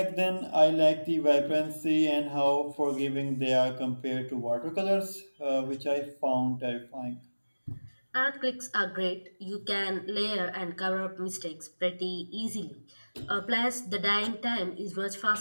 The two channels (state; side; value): inverted; both; correlation -1.00